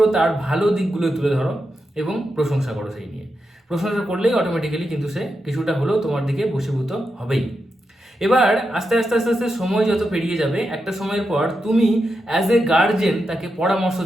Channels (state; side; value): normal; both; correlation 0.87